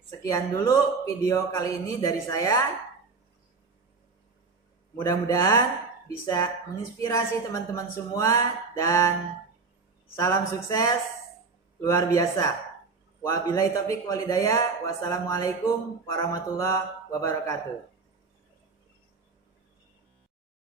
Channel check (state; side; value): quieter; left; 4.4 dB